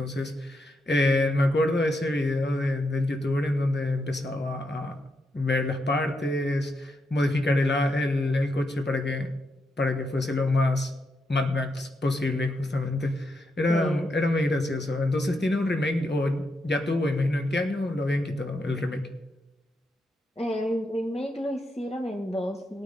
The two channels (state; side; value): normal; both; correlation 0.82